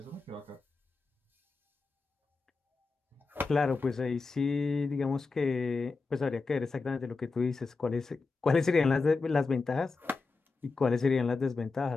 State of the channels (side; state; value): right; quieter; 4.1 dB